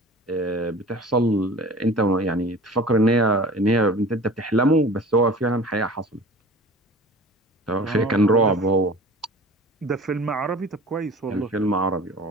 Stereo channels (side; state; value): both; normal; correlation 0.41